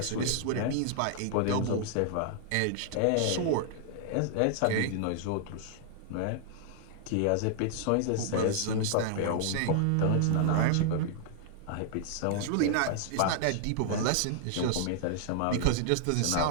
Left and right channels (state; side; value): different; both; correlation -0.01